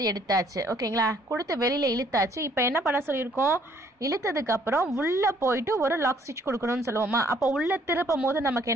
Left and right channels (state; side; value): normal; both; correlation 0.63